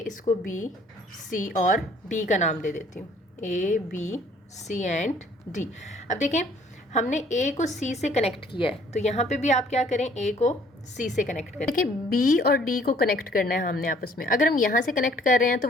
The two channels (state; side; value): normal; both; correlation 0.59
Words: इसको बी, सी और डी का नाम दे देती हूँ। A B C and D. अब देखें, हमने ए को सी से कनेक्ट किया है, तो यहाँ पे भी आप क्या करें, ए को सी से कनेक्ट करें। देखिए, बी और डी को कनेक्ट करना है हमने आपस में। अगर हम यहाँ से कनेक्ट कर रहे हैं तो